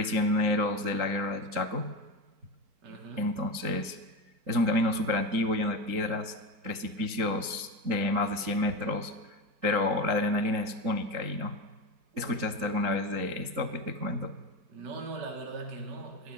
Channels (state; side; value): late; left; 3.9 ms